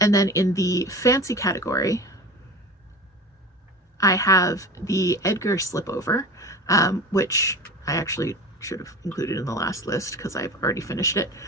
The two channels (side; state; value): both; normal; correlation 0.33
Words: then in the fancy category, I have the Edgar slipover, which I actually should have included in the last list because I've already finished it.